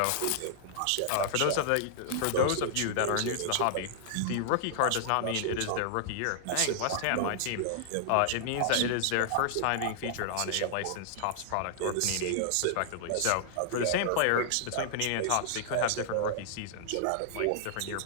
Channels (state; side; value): different; both; correlation -0.01